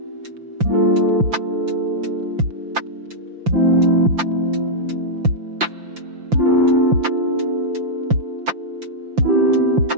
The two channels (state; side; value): late; left; 5.8 ms